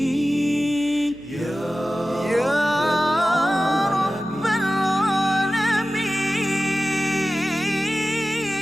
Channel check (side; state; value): left; noise; hum, 24 dB below the sound